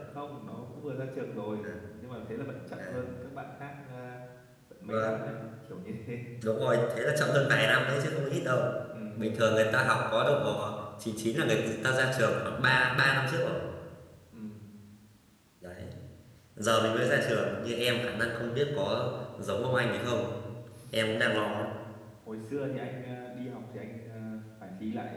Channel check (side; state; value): both; identical; correlation 1.00